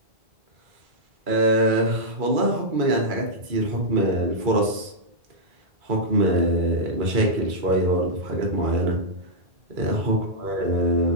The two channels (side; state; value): left; late; 2.3 ms